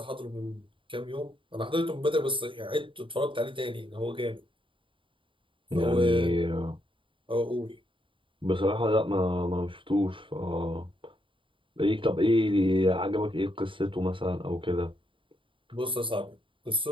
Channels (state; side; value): late; left; 0.25 ms